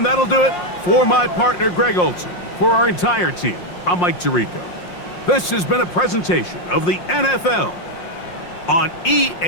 that'll do it for my partner, Greg Olson. For our entire team, I'm Mike Tirico. This has been a presentation of the NFL on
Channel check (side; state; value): right; late; 5.6 ms